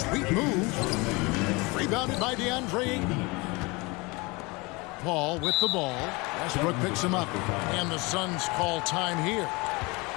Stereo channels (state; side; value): quieter; right; 25.7 dB